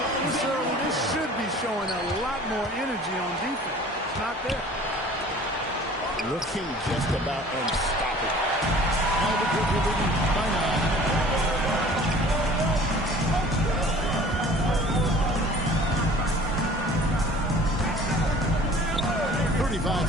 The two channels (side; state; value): both; normal; correlation 0.47